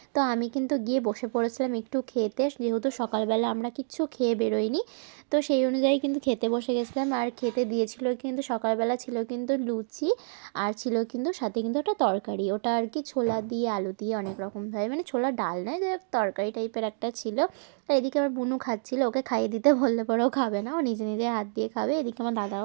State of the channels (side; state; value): left; silent; digital silence